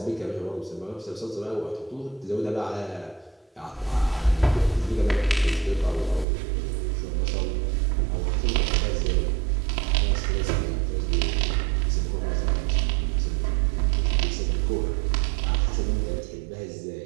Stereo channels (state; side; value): drops out; left; at 6.2 s